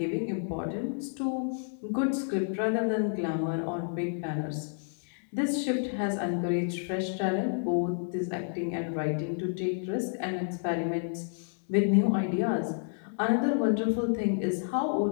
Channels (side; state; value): right; silent; digital silence